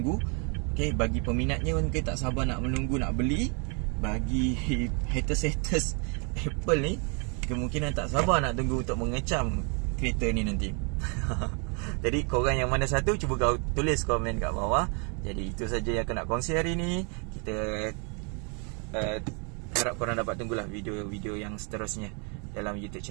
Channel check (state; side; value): quieter; left; 36.1 dB